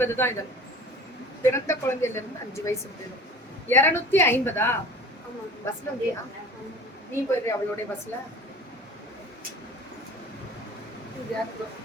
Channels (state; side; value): normal; both; correlation 0.42